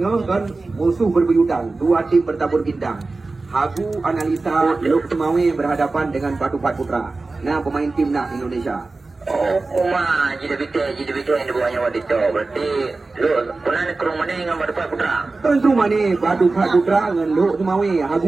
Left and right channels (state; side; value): quieter; left; 3.6 dB